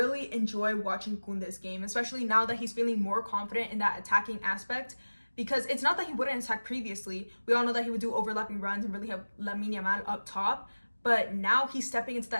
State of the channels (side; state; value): both; inverted; correlation -1.00